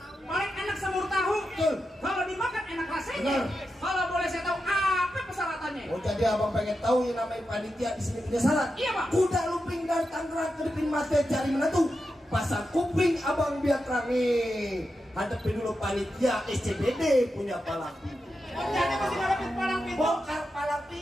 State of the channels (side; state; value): both; normal; correlation 0.89